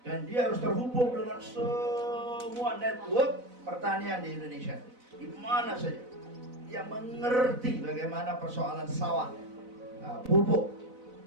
Dan dia harus terhubung dengan semua network pertanian di Indonesia. Di mana saja. Dia mengerti bagaimana persoalan sawah, pupuk,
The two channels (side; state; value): left; late; 4.0 ms